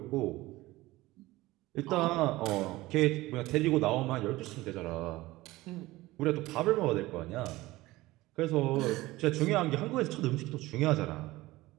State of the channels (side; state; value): left; quieter; 18.8 dB